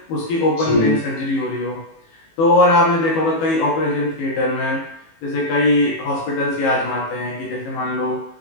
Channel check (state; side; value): late; right; 18 ms